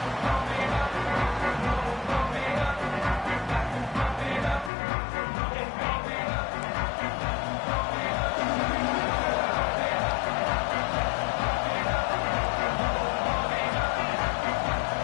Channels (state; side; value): drops out; right; at 4.7 s